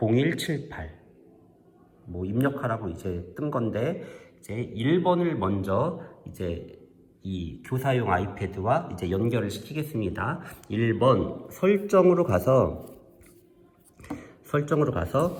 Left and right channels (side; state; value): both; identical; correlation 1.00